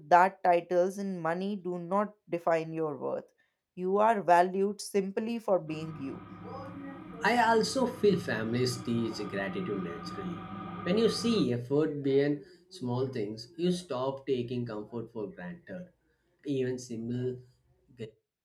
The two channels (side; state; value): both; identical; correlation 1.00